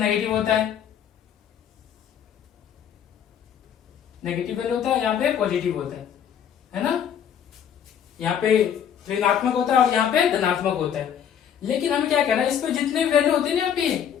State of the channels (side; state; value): right; quieter; 8.8 dB